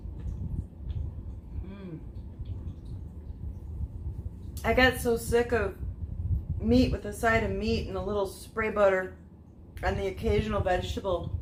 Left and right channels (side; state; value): both; identical; correlation 1.00